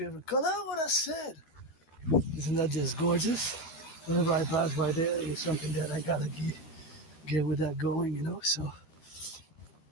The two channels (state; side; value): late; right; 12 ms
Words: color. What I said. Isn't that just gorgeous? Whenever I pass by there, it's something that I gotta get with that going, So